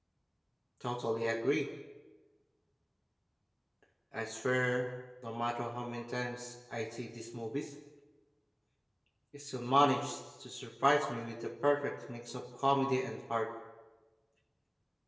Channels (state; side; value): identical; both; correlation 1.00